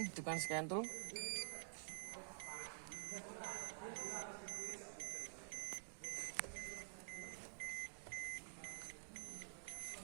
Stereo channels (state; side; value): silent; left; digital silence